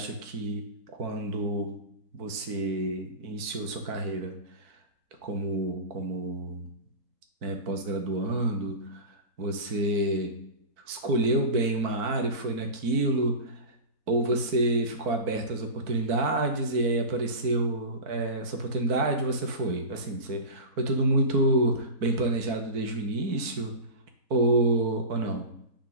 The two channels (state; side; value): late; left; 4.5 ms